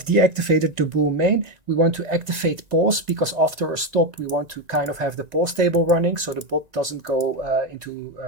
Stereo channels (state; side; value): late; left; 1.9 ms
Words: deactivated the bull main. We want to activate pause because after a stop we want to kind of have the pause table running so the bot doesn't go into